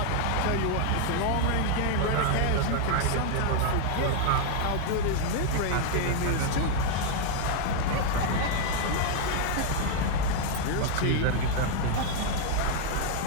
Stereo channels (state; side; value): different; both; correlation 0.00